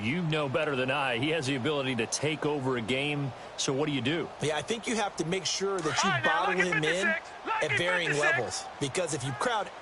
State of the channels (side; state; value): both; identical; correlation 1.00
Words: know better than I. He has the ability to take over a game, so what do? Yeah, I think you have to make sure that you bottle him in at varying levels, because if you crowd